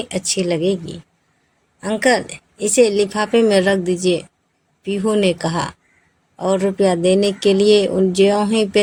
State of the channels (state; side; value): identical; both; correlation 1.00